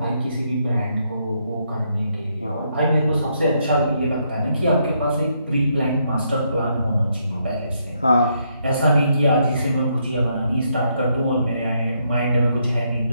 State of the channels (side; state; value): both; inverted; correlation -0.75